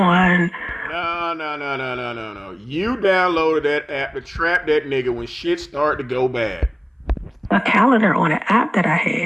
No. You downloaded that app to trap that nigga when shit started to go bad. A calendar on an app that I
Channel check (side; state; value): both; identical; correlation 1.00